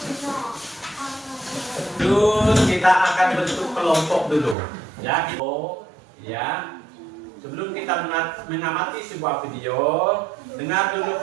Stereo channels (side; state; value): left; drops out; at 4.5 s